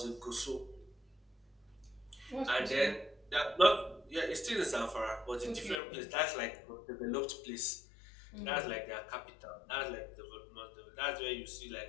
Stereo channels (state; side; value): drops out; right; at 5.8 s